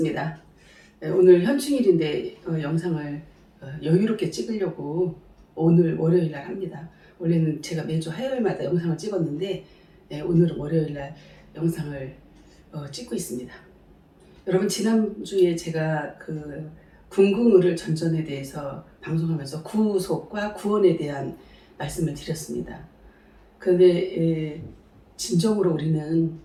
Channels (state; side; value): identical; both; correlation 1.00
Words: 오늘 현충일인데 영상을 여유롭게 찍으려고 오늘 월요일 날 합니다. 원래는 제가 매주 화요일마다 영상을 찍었는데 오늘은 월요일 날 영상을 찍고 있습니다. 여러분 지난주에 제가 그 궁극의를 전전에 대해서 방송하면서 구속과 구원에 대한 말씀을 드렸습니다. 그런데 진정으로